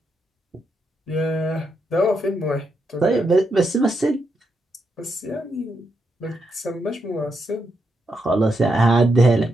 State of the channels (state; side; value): normal; both; correlation 0.82